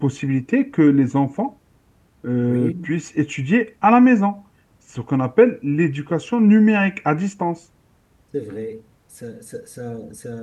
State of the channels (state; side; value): identical; both; correlation 1.00